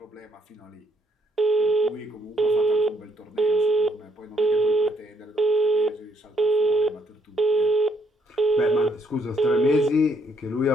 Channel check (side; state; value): both; normal; correlation 0.71